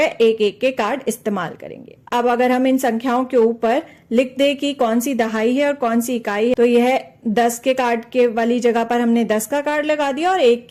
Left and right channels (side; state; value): both; identical; correlation 1.00